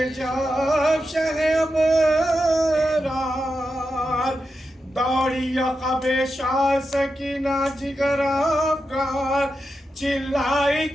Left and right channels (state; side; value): normal; both; correlation 0.89